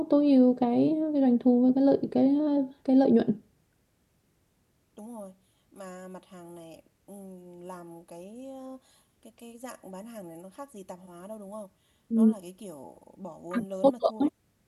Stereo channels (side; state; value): both; identical; correlation 1.00